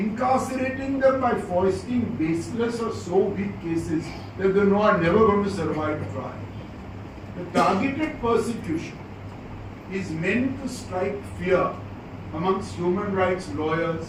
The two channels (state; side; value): identical; both; correlation 1.00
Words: them by foisting baseless or so weak cases that they know are never going to survive trial. The targeted persecution is meant to strike fear amongst human rights lawyers,